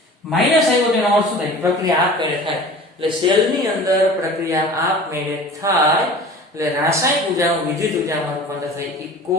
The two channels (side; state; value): both; normal; correlation 0.41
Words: માઈનસ આવ્યો તેનો અર્થ શું થાય પ્રક્રિયા આપમેળે થાય એટલે સેલની અંદર પ્રક્રિયા આપમેળે થાય એટલે રાસાયણિક ઉર્જાનું વિદ્યુત ઉર્જામાં રૂપાંતર થાય. એ